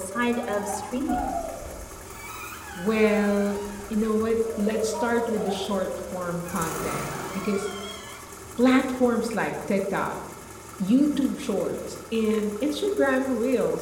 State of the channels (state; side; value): identical; both; correlation 1.00